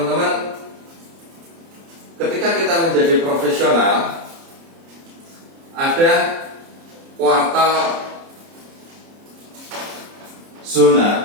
ketika kita menjadi profesional, ada kuartal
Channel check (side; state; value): left; late; 30 ms